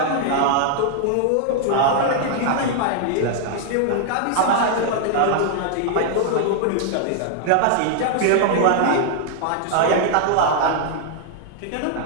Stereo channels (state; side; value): different; both; correlation 0.00